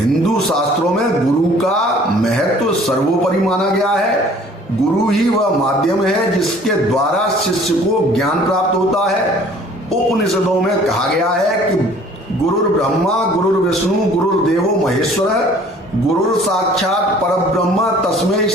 शास्त्रों में गुरु का महत्व सर्वोपरि माना गया है। गुरु ही वह माध्यम है जिसके द्वारा शिष्य को ज्ञान प्राप्त होता है। उपनिषदों में कहा गया है कि गुरुर् ब्रह्मा गुरुर्विष्णु गुरुर्देवो महेश्वर गुरुर साक्षात परब्रह्म तस्मै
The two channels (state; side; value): normal; both; correlation 0.53